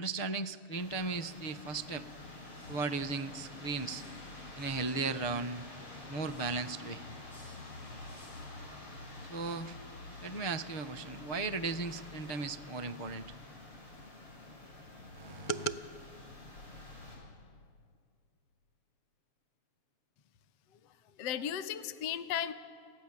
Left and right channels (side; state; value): right; late; 7.1 ms